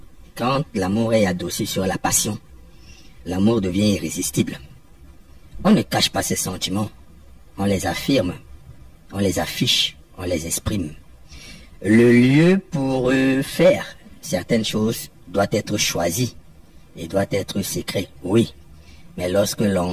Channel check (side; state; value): both; identical; correlation 1.00